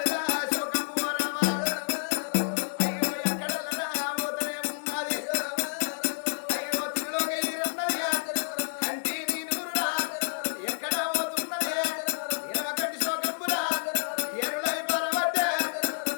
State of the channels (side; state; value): right; silent; digital silence